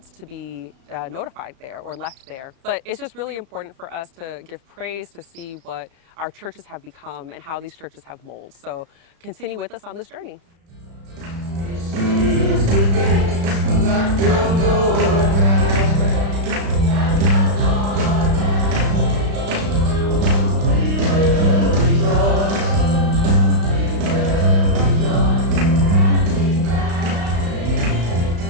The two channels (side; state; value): left; late; 35 ms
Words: to be notified there or left there. But it's just really important for us to give praise to see what our churches have become and how these churches have molded. So continue with us on this journey.